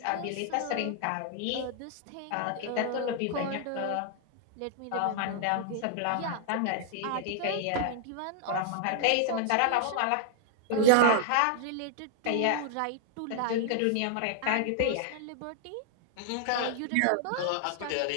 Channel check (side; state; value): both; different; correlation -0.01